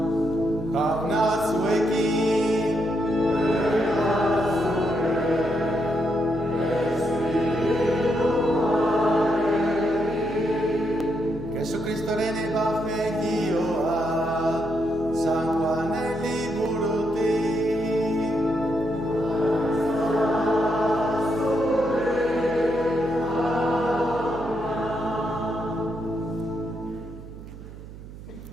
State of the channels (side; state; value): right; noise; hum, 14 dB below the sound